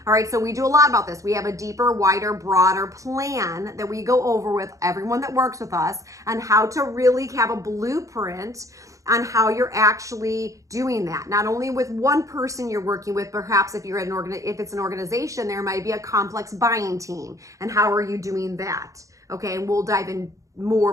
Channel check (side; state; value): left; late; 0.16 ms